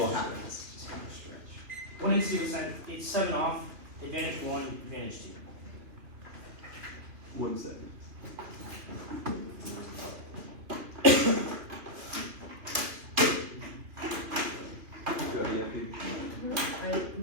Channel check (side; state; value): left; late; 3.0 ms